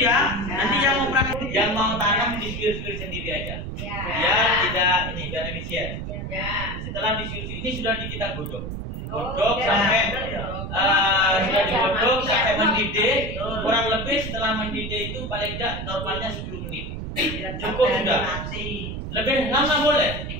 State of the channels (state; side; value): noise; right; rumble, 6 dB below the sound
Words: ya. Nanti yang mau tanam disuwir-suwir sendiri aja. Ya, biar efisien. Setelah disuwir ini sudah kita godok sampai sudah digodok sampai mendidih. Kurang lebih setelah mendidih itu paling tidak normalnya 10 menit. Cukup sudah. Lebih lama boleh.